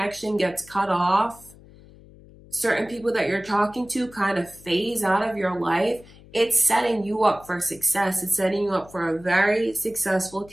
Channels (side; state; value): left; noise; hum, 22 dB below the sound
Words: gets cut off, certain people that you're talking to kind of phase out of your life, it's setting you up for success. It's setting you up for a very successful